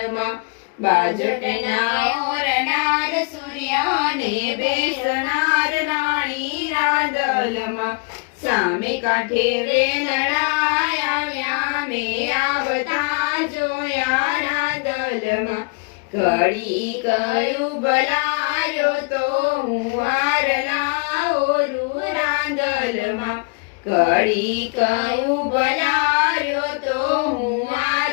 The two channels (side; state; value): right; quieter; 29.5 dB